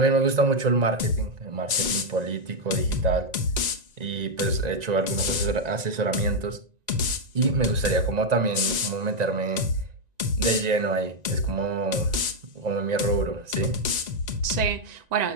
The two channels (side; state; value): left; late; 1.9 ms